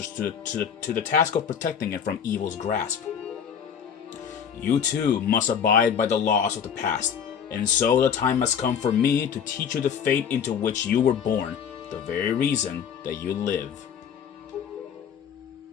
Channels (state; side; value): quieter; right; 7.7 dB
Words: to the task of protecting it from evil's grasp. You too must abide by the laws of the past And so the time has come for me to teach you the fate into which you were born, the very reason that you live.